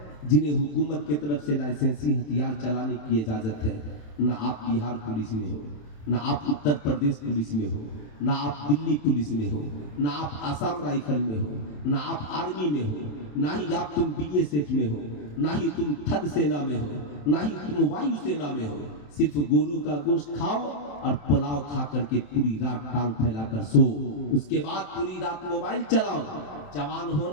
جنہیں حکومت کی طرف سے لائسنسی ہتھیار چلانے کی اجازت ہے؟ نہ آپ بہار پولیس میں ہو، نہ آپ اتر پردیش پولیس میں ہو، نہ آپ دلی پولیس میں ہو، نہ آپ آسام رائفل میں ہو، نہ آپ آرمی میں ہو، نہ ہی آپ تم BSF میں ہو، نہ ہی تم تھل سینا میں ہو، نہ ہی تم وایو سینا میں ہو۔ صرف گورو کا گوشت کھاؤ اور پلاؤ کھا کر کے پوری رات ٹانگ پھیلا کر سو، اس کے بعد پوری رات موبائل چلاؤ۔ جوان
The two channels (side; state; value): right; late; 27 ms